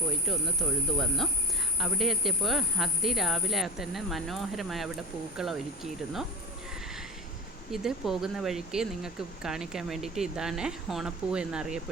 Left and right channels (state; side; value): normal; both; correlation 0.25